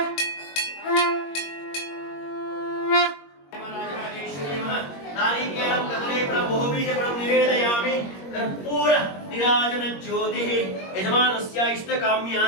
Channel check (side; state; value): right; late; 21 ms